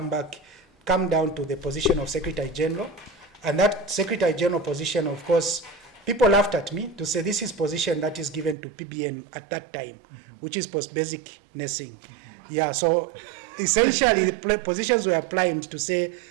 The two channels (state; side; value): drops out; left; at 8.6 s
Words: come down to the position of Secretary General. And that Secretary General position, of course, people laughed at me to say this is position that is given to PBN at that time, which is post-basic nursing. Yeah, so essentially the positions were applied to say